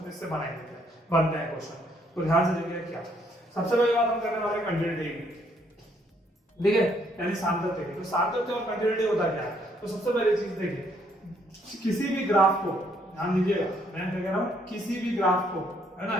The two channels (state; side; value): normal; both; correlation 0.69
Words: इससे बनते हैं क्वेश्चन। तो ध्यान से देखिए क्या सबसे पहली बात हम करने वाले हैं कंटिन्यूटी की, ठीक है, यानी सार्थक्य की। तो सार्थक्य और कंटिन्यूटी होता क्या है? तो सबसे पहली चीज देखिए, किसी भी ग्राफ को ध्यान दीजिएगा, मैं क्या कह रहा हूं, किसी भी ग्राफ को, है ना,